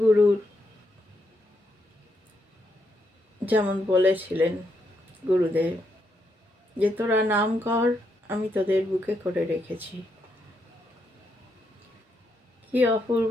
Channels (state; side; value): normal; both; correlation 0.79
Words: যেমন বলেছিলেন গুরুদেব যে তোরা নাম কর, আমি তোদের বুকে করে রেখেছি। কি অপূর্ব